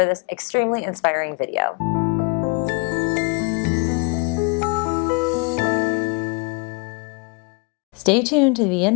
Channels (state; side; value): quieter; right; 32.0 dB